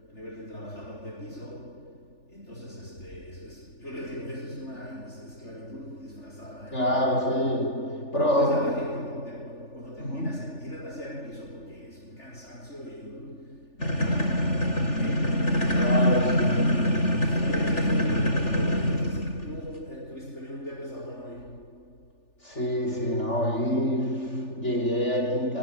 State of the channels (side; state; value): right; late; 3.4 ms